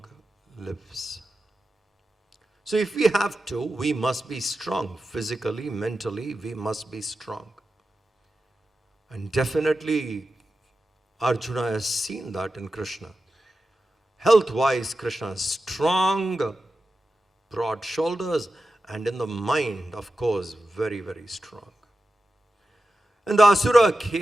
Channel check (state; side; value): normal; both; correlation 0.92